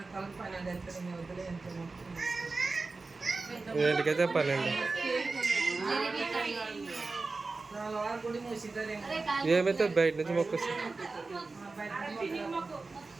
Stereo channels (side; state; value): left; quieter; 3.8 dB